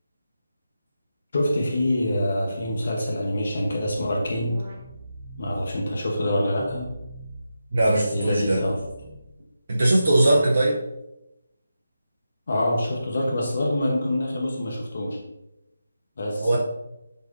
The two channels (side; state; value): both; inverted; correlation -0.88